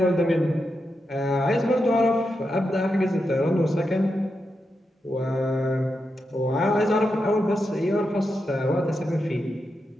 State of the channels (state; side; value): normal; both; correlation 0.86